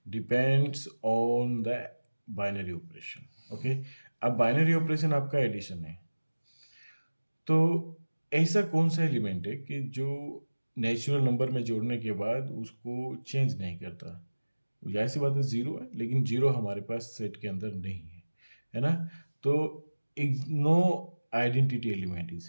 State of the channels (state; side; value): inverted; both; correlation -1.00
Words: depends on the binary operation. Okay, अब बाइनरी ऑपरेशन आपका एडिशन है, तो ऐसा कौन सा एलिमेंट है कि जो नेचुरल नंबर में जोड़ने के बाद उसको चेंज नहीं करता। जाहिर सी बात है जीरो है, लेकिन जीरो हमारे पास सेट के अंदर नहीं है ना। तो no identity element